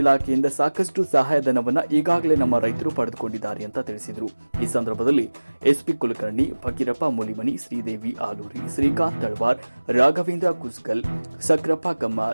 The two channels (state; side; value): inverted; both; correlation -1.00